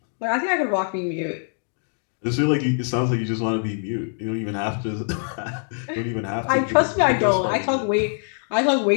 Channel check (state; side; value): silent; right; 63 dB below the other